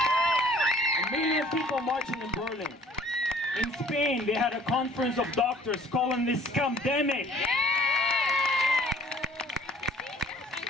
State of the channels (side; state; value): both; normal; correlation 0.54